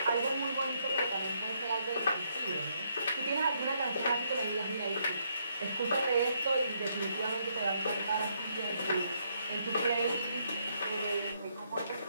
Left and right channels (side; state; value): both; inverted; correlation -0.74